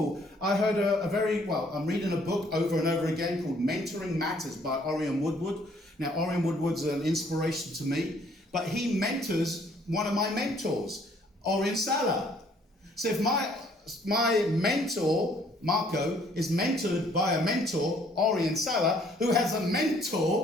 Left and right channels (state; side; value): normal; both; correlation 0.62